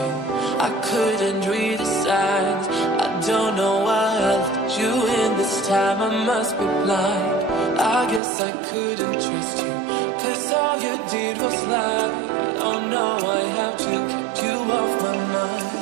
I couldn't read the signs. I don't know why I let you in this time. I must be blind. I guess I couldn't trust you, 'cause all you did was lie. Oh no, I have to keep you off my mind.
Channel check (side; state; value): left; drops out; at 8.2 s